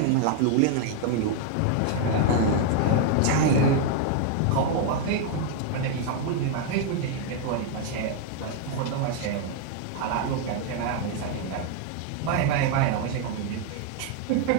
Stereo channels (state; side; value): different; both; correlation 0.00